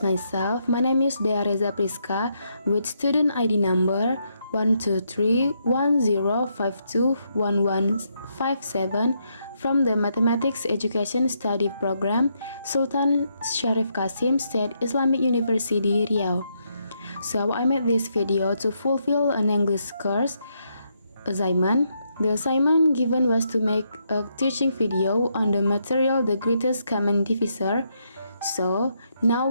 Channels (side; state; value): both; inverted; correlation -0.78